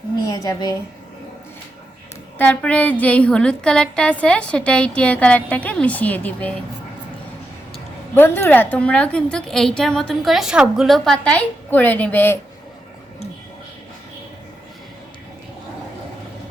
নিয়ে যাবে। তারপরে যেই হলুদ কালারটা আছে সেটা এই টিয়া কালারটাকে মিশিয়ে দিবে। বন্ধুরা, তোমরাও কিন্তু এইটার মতন করে সবগুলো পাতাই করে নেবে।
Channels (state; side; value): normal; both; correlation 0.86